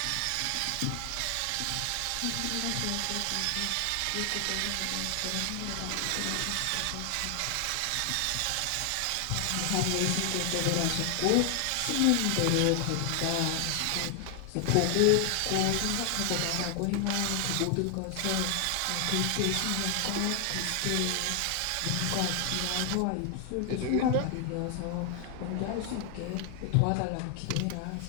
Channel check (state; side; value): different; both; correlation 0.00